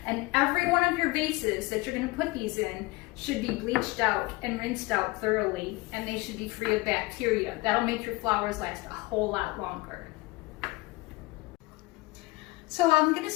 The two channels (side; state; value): right; quieter; 22.2 dB